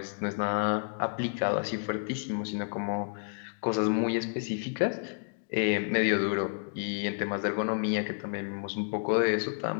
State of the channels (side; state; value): right; silent; digital silence